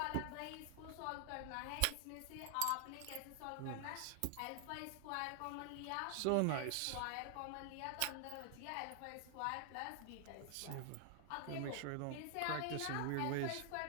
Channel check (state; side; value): different; both; correlation 0.00